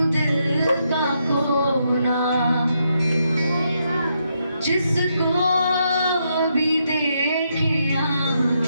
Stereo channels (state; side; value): inverted; both; correlation -0.80